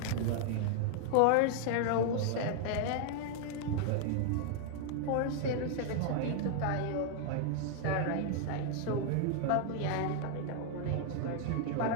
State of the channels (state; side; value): different; both; correlation 0.00